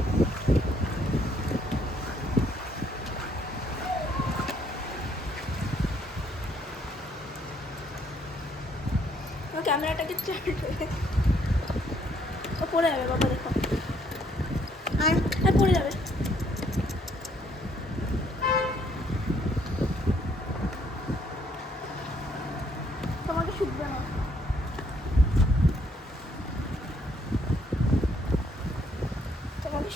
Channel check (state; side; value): normal; both; correlation 0.68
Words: ক্যামেরাটাকে পড়ে যাবে বাবা, দেখো পড়ে যাবে। তোমাকে শুকবে না, তোমাকে